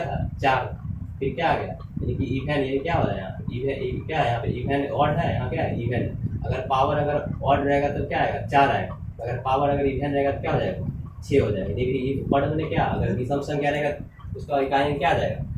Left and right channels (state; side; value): identical; both; correlation 1.00